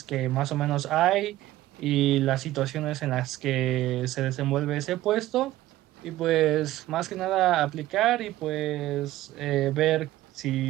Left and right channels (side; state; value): left; quieter; 15.5 dB